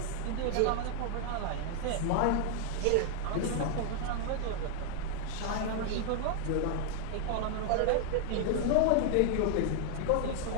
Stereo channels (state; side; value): different; both; correlation 0.00